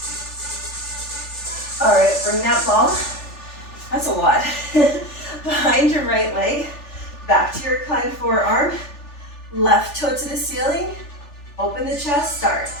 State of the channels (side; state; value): right; late; 3.4 ms